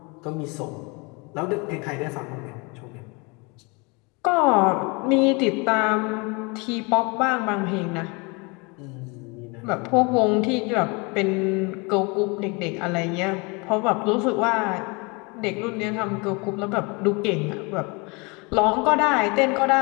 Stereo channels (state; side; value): quieter; right; 29.1 dB